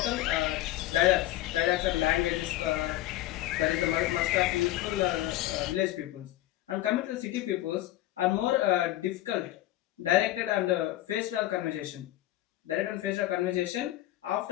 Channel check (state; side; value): quieter; right; 15.1 dB